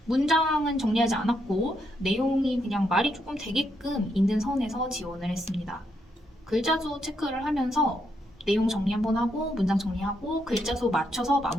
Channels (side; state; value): both; normal; correlation 0.78